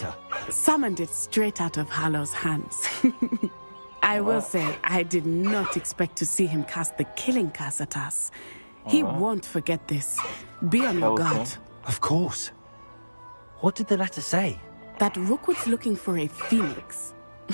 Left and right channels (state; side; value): inverted; both; correlation -1.00